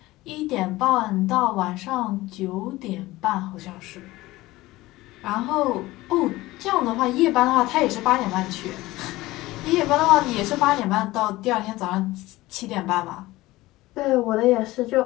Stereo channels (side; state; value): right; quieter; 18.5 dB